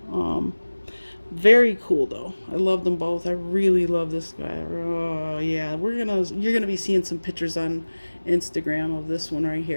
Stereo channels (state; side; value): inverted; both; correlation -1.00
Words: Very cool though. I love them both. I really love this guy. Oh yeah, you're gonna be seeing some pictures on Instagram of this one right